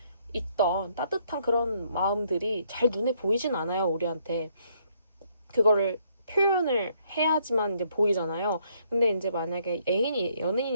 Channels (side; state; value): both; inverted; correlation -0.70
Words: 있던 따뜻한 그런 마음들이 잘 눈에 보이진 않아요, 우리한테. 그거를 표현을 해야지만 이제 보이잖아요. 근데 이제 만약에